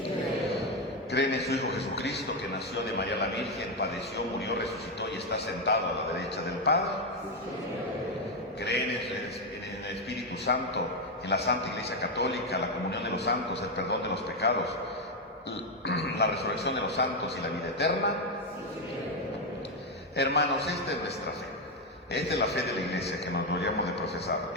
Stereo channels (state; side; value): normal; both; correlation 0.06